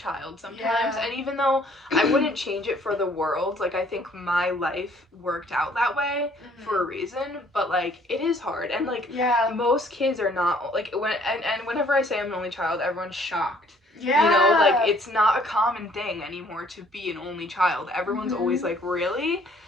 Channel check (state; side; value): normal; both; correlation 0.60